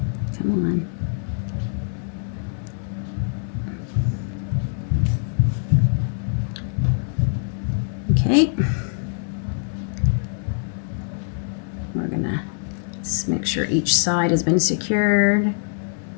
Come on. Okay. We're gonna just make sure each side has been secured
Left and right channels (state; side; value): silent; right; digital silence